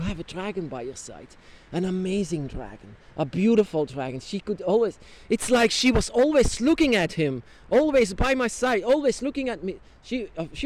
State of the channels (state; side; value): identical; both; correlation 1.00